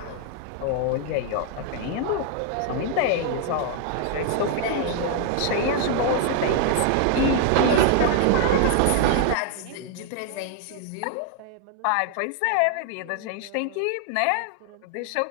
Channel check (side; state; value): both; different; correlation 0.00